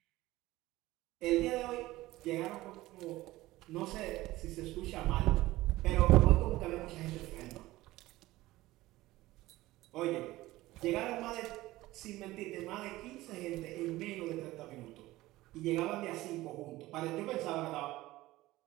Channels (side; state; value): left; quieter; 17.7 dB